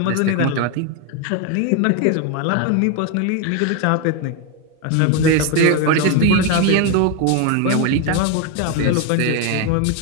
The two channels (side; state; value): both; different; correlation 0.02